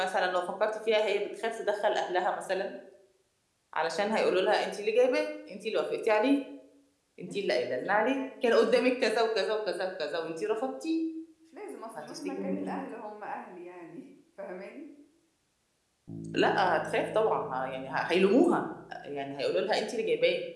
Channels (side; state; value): both; identical; correlation 1.00